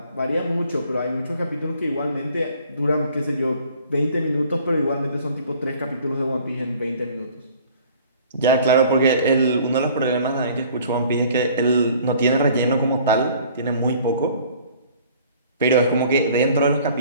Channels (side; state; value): both; inverted; correlation -0.53